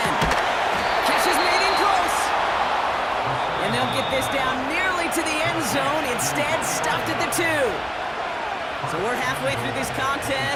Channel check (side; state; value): both; identical; correlation 1.00